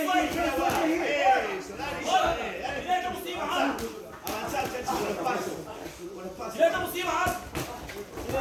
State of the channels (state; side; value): identical; both; correlation 1.00